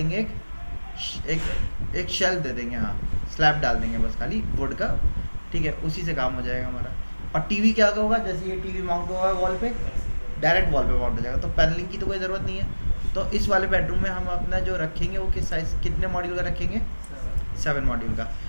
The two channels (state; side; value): inverted; both; correlation -1.00